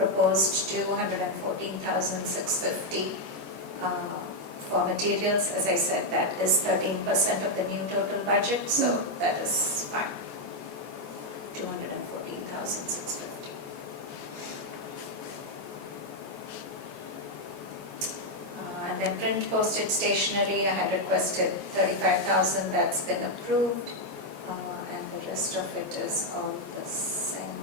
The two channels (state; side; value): late; left; 14 ms